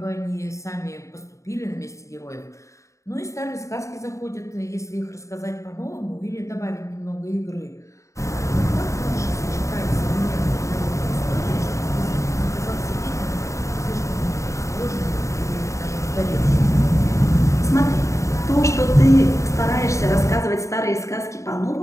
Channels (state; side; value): late; right; 0.15 ms